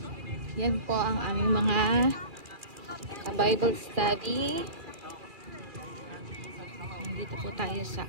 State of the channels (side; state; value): left; late; 2.4 ms